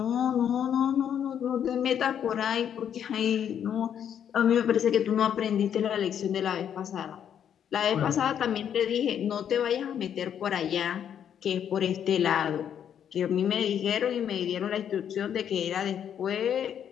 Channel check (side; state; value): right; quieter; 9.0 dB